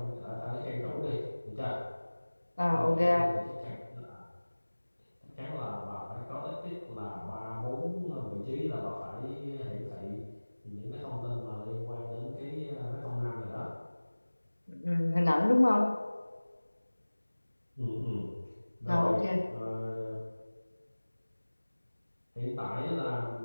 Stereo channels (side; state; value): both; inverted; correlation -1.00